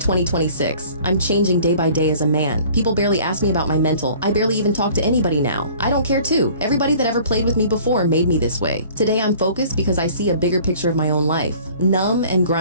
I'm changing day by day as a man. People barely ask me about my mental. I barely even talk to anybody now. I don't care too. Everybody that ever played with me before made me this way. Today I'm focused because I see a bigger picture of my own life. Numb and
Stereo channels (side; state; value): both; inverted; correlation -0.50